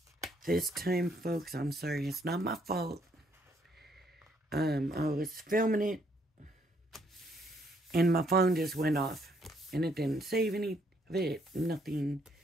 This time, folks, I'm sorry, it's not my fault. I was filming it and my phone just went off and it didn't save any of it, nothing.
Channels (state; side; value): normal; both; correlation 0.69